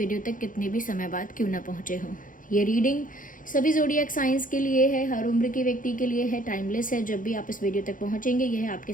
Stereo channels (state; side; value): late; right; 0.39 ms